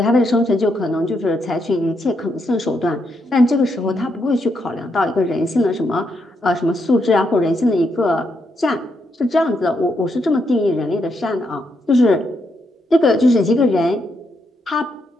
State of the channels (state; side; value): normal; both; correlation 0.79